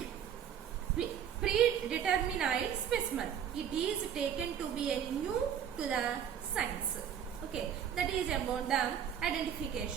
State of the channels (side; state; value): left; quieter; 8.8 dB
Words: specimen, it is taken to be a new to the science. Okay, that is about the